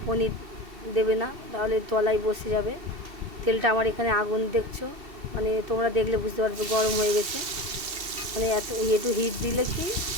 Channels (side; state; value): left; late; 2.7 ms